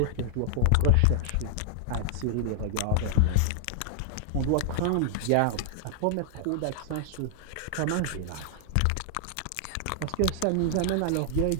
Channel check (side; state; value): both; different; correlation -0.01